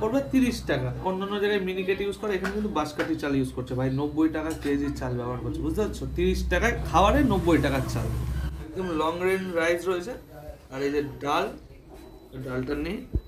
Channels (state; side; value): identical; both; correlation 1.00